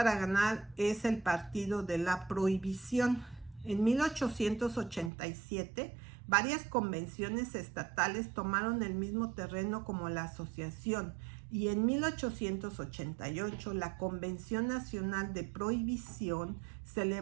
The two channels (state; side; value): drops out; left; at 5.1 s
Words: ganar es el Partido de la Prohibición. En 1887, varias convenciones estatales tomaron el mismo terreno como la asociación, y en 1888 la Convención Nacional de Prohibición,